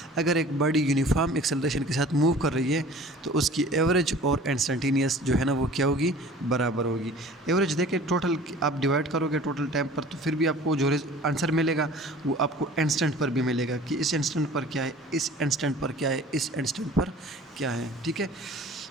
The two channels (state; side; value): normal; both; correlation 0.46